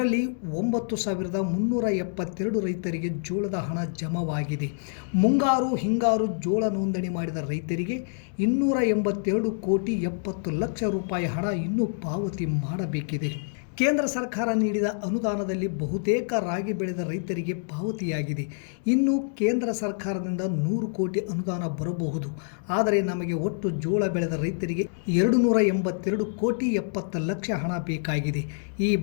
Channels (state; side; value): silent; right; digital silence